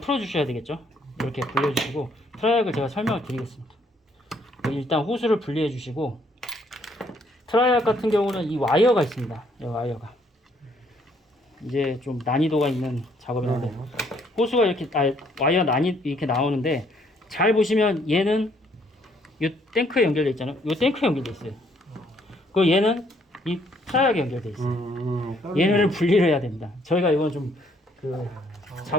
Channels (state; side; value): normal; both; correlation 0.67